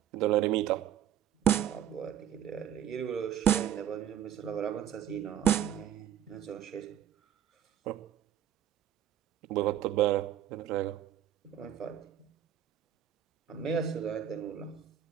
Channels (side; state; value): left; quieter; 10.5 dB